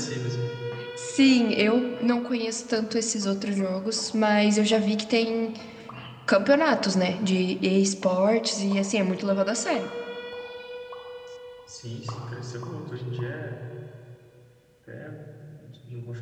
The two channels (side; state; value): both; identical; correlation 1.00